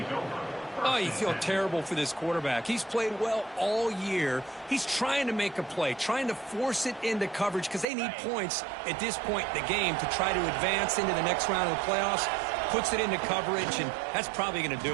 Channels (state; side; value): drops out; left; at 7.9 s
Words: Oh, you feel terrible for this quarterback. He's played well all year. He's trying to make a play, trying to force it into coverage because they need points at this point in the game to try to advance into the next round of the playoffs. Puts it into coverage, and that's probably going to